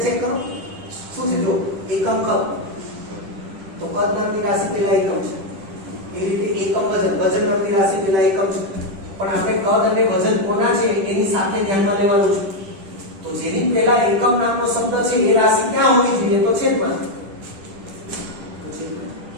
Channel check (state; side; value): late; left; 10 ms